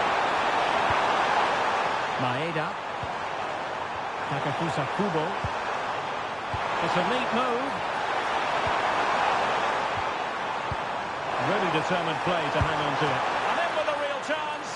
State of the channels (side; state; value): both; identical; correlation 1.00